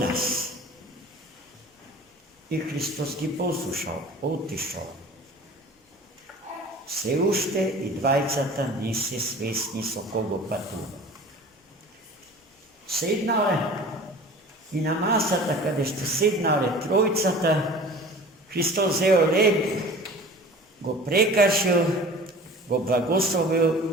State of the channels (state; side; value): normal; both; correlation 0.42